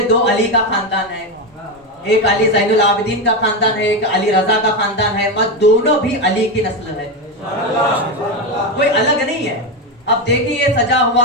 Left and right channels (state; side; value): normal; both; correlation 0.12